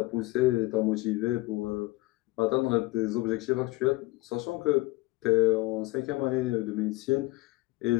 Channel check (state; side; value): quieter; right; 21.2 dB